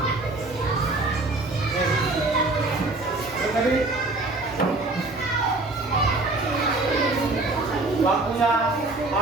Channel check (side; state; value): left; quieter; 3.1 dB